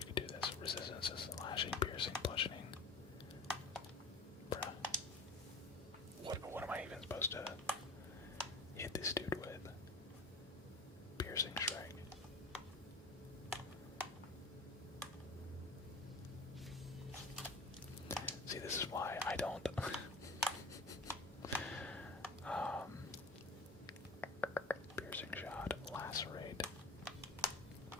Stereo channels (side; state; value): right; quieter; 3.0 dB